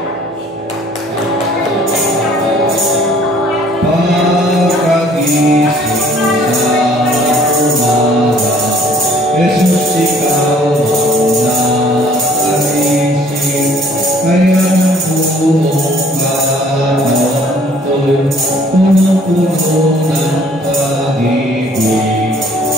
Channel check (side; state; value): both; normal; correlation 0.57